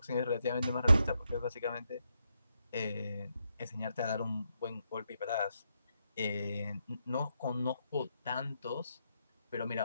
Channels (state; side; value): inverted; both; correlation -0.81